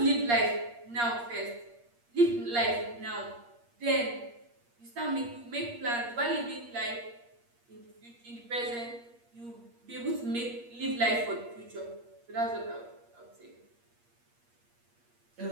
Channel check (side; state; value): left; late; 8.5 ms